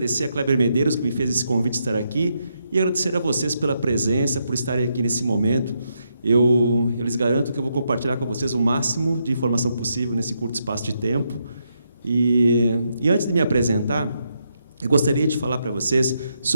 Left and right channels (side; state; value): both; inverted; correlation -0.80